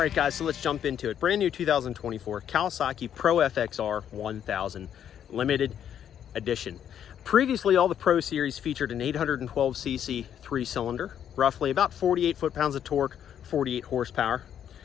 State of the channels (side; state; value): right; quieter; 9.4 dB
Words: guys, so let's jump into it. Brand new 2024 Kawasaki PRO-FXR 1000 limited edition. Previously, all the Pro Series featured an 812cc three-cylinder, roughly about 48 foot-pounds of torque, 48 horsepower,